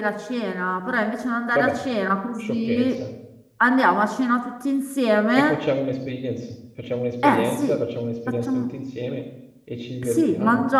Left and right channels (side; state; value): both; identical; correlation 1.00